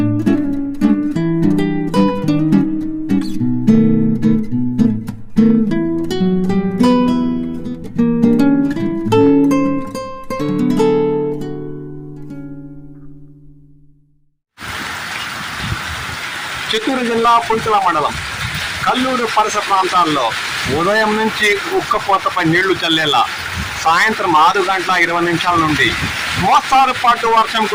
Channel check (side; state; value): both; identical; correlation 1.00